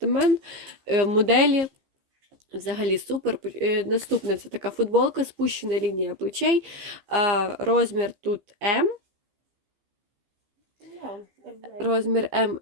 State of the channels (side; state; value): left; late; 15 ms